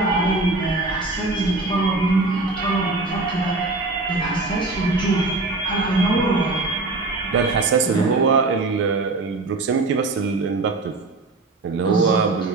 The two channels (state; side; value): quieter; left; 3.3 dB